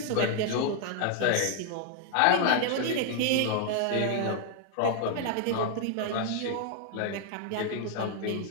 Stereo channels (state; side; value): different; both; correlation 0.00